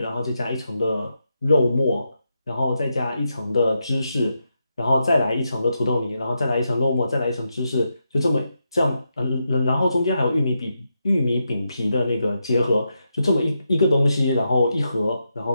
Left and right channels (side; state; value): both; inverted; correlation -0.85